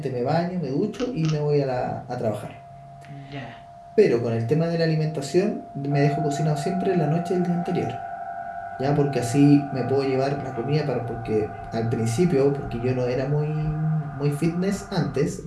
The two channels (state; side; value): identical; both; correlation 1.00